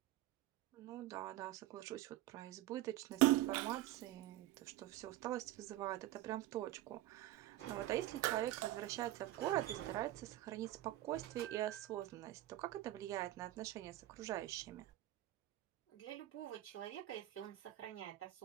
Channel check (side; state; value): left; quieter; 15.1 dB